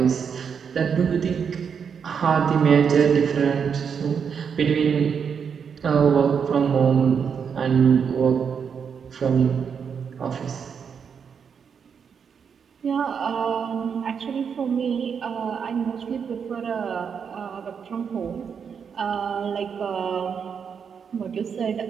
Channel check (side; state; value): left; quieter; 6.8 dB